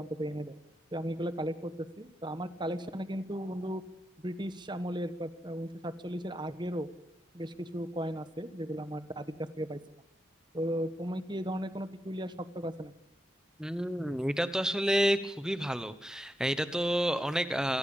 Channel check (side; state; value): both; normal; correlation 0.85